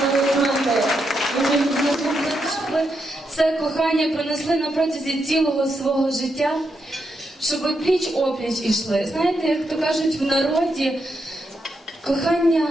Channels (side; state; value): both; normal; correlation 0.83